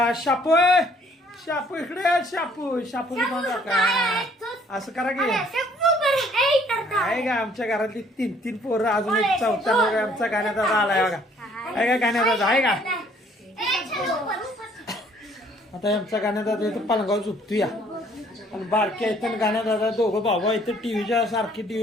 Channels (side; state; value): both; normal; correlation 0.60